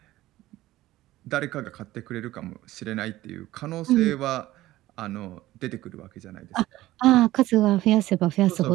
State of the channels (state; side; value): quieter; left; 16.2 dB